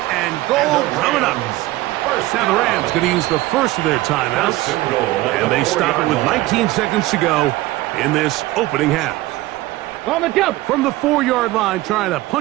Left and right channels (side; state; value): left; quieter; 18.0 dB